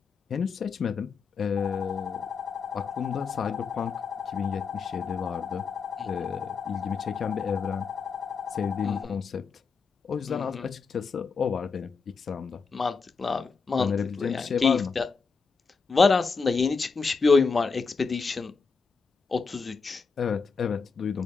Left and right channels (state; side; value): quieter; right; 5.1 dB